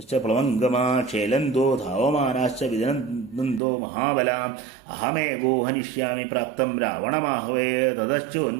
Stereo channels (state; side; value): drops out; left; at 3.6 s